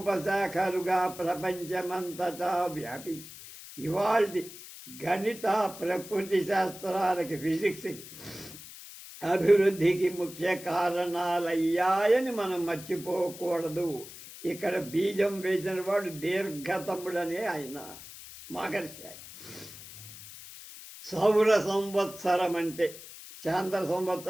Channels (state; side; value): noise; left; hiss, 15 dB below the sound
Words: ప్రపంచమంతటా వ్యాపించి ఇవాళ గణిత ప్రకృతి శాస్త్రాలకి, ఫిజిక్స్ అభివృద్ధికి ముఖ్య కారణాలయ్యాయని మనం మర్చిపోకూడదు. ఇక్కడ బీజం వేసిన వాడు దీర్ఘతముడనే ఆయన మహర్షి. సౌర సంవత్సరం అంటే చాంద్ర